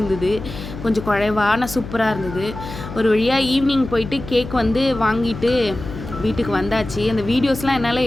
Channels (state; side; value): noise; left; hum, 11 dB below the sound